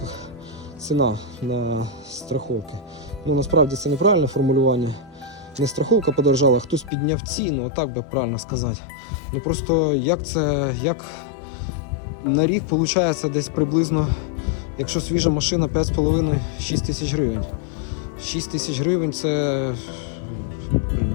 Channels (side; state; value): right; drops out; at 6.9 s